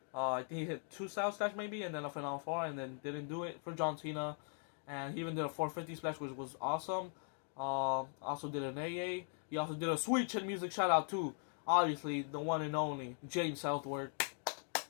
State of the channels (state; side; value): silent; right; 51 dB below the other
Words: I think he hit 2 Styles Clash maybe, and then a Final 4, and then didn't do it for John Cena. And he even did a 450 splash, which was awesome. Also did an AA. He also did a sweet chin music shout out to, obviously, the one and only James Southward.